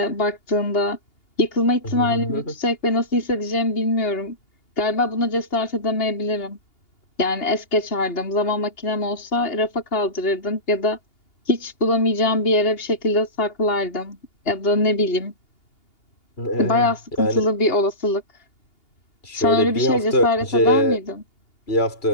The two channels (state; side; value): late; right; 2.8 ms